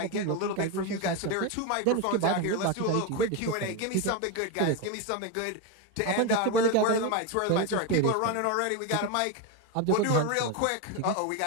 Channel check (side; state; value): both; different; correlation 0.03